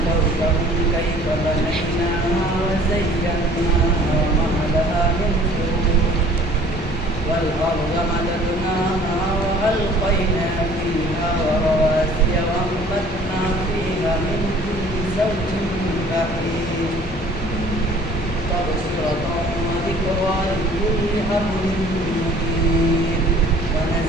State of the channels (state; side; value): normal; both; correlation 0.52